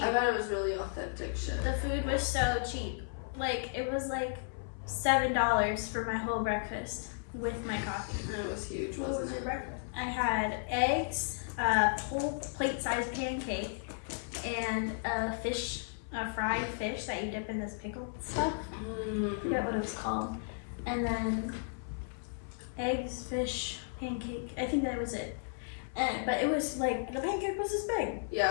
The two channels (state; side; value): silent; right; 55 dB below the other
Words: I bet it was really authentic shit. The food was so cheap. Like, it was like $7 for my whole breakfast with my coffee. And it was huge, What wasn't was your it? breakfast? I had eggs, a whole plate-sized pancake, and a fried fish that you dip in this pickled stuff. I forget what it was called. And then eggs, fish, pancake. I think that was it. But it was like, the pancake was this big.